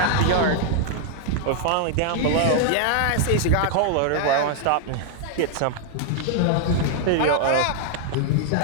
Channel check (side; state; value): both; different; correlation 0.00